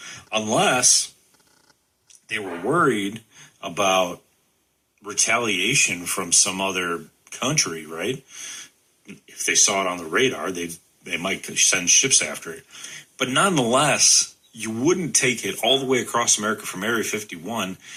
unless they were worried about retaliation from some other country, right? If they saw it on the radar, they might send ships after it. But nonetheless, you wouldn't take it all the way across America from Area 51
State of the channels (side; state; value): both; identical; correlation 1.00